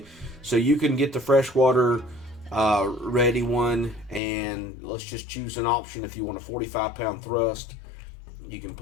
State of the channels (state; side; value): drops out; right; at 4.2 s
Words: so you can get the freshwater ready one, and let's just choose an option. If you want a 45-pound thrust, you can